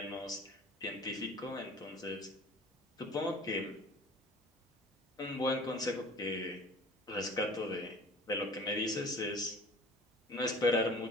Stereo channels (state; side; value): normal; both; correlation 0.45